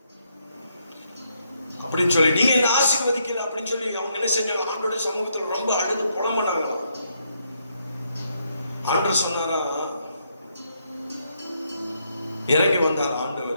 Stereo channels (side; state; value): both; inverted; correlation -0.76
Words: அப்படின்னு சொல்லி, நீங்க என்ன ஆசீர்வதிக்கல அப்படின்னு சொல்லி அவங்க என்ன செஞ்சாங்க, ஆண்டவருடைய சமூகத்துல ரொம்ப அழுது புலம்புனாங்க. ஆண்டவர் சொன்னாரா, இறங்கி வந்தார்